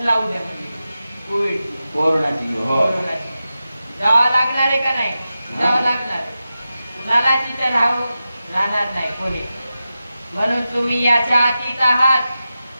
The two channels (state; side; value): inverted; both; correlation -0.92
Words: लावू द्या म्हणजे कोरोनाची जावं लागणार आहे का नाही? जावं लागणार. कुणाला तिथं राहणार नाही कोणी. म्हणून तुम्ही याच्या अतीत आहात.